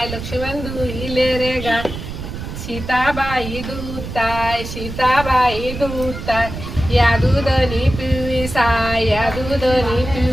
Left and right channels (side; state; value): right; noise; rumble, 8 dB below the sound